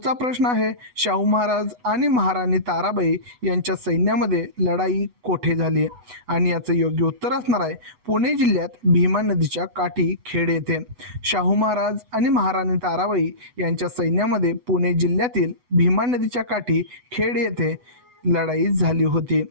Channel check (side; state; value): left; late; 8.1 ms